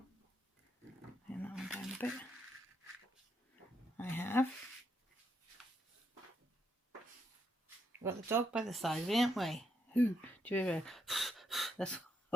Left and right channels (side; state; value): both; normal; correlation 0.76